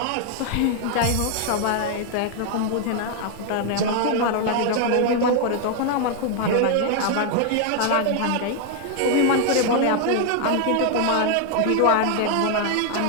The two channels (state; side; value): different; both; correlation 0.00